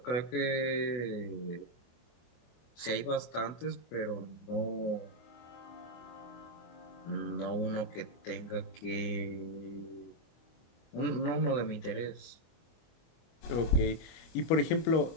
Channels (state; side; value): late; right; 24 ms